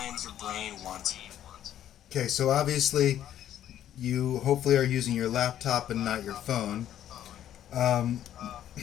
your brain wants. Okay, so obviously you hopefully are using your laptop and not your phone. Um,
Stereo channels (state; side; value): quieter; right; 11.2 dB